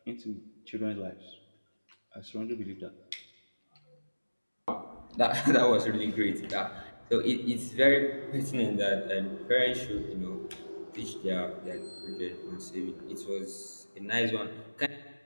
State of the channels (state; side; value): inverted; both; correlation -1.00